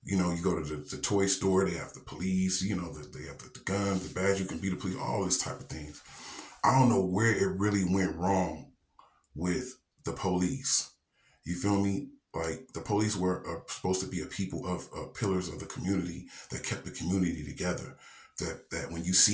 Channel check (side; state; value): both; identical; correlation 1.00